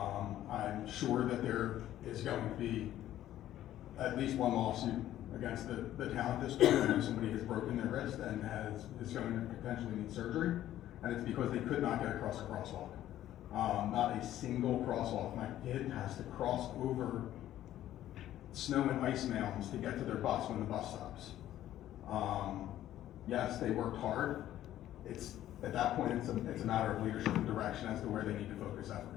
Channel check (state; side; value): quieter; right; 12.9 dB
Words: I'm sure that there is going to be at least one lawsuit against the town at this point. I know somebody has broken their wrist and is going to potentially need surgery, and it's because they could not get across a crosswalk. Not a single crosswalk. My kid has to cross over snow and ice mounds to get to their bus when the bus stops. Yes, they worked hard. At that point, it's a matter of leadership and direction as to where they need to focus